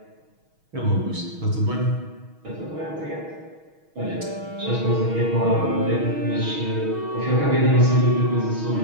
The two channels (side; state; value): left; late; 6.3 ms